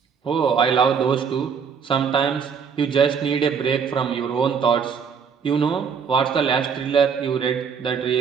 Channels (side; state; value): left; quieter; 6.6 dB